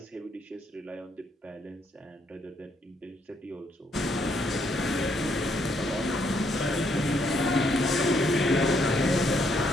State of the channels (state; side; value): normal; both; correlation 0.72